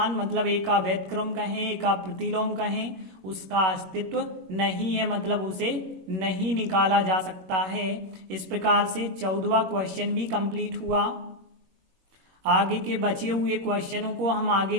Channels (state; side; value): late; left; 21 ms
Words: मतलब A का व्यतक्रम कहें, A का प्रतिलोम कहें, उसका अस्तित्व नहीं है, मतलब उसे नहीं निकाला जा सकता है। इस प्रकार से 14वां क्वेश्चन भी कंप्लीट हुआ। आगे के बचे हुए क्वेश्चनों को हम आगे